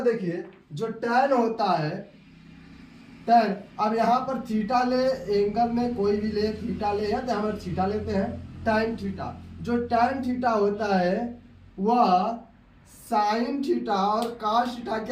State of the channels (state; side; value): identical; both; correlation 1.00